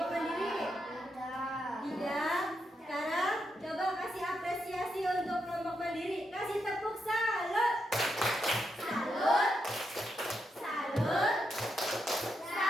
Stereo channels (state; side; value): normal; both; correlation 0.82